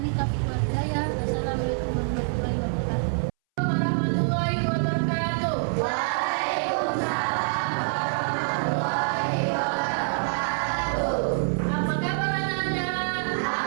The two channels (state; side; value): silent; left; 61 dB below the other